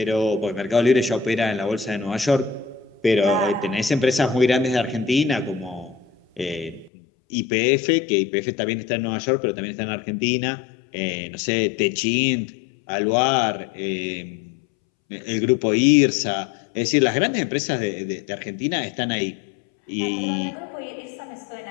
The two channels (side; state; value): right; drops out; at 6.9 s